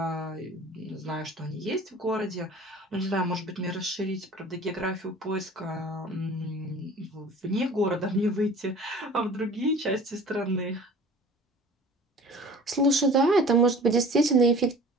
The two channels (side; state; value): both; normal; correlation 0.45